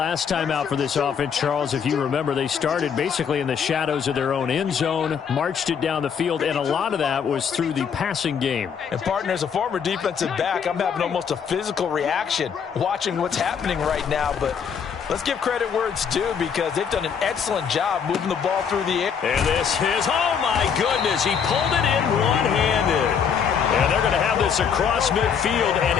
time out for this offense, Charles. If you remember, they started basically in the shadows of their own end zone, marched it down the field, and a lot of that was through the passing game. And, partner, as a former defensive back, I'm having almost a physical reaction watching what's happening right now. But let's give credit where it's due because they've done an excellent job moving the ball through the air. And this is, oh, my goodness, he pulled it in one-handed. And they're going to have this across midfield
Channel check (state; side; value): quieter; right; 7.1 dB